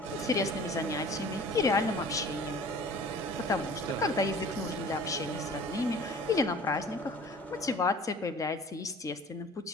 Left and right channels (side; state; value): both; normal; correlation 0.45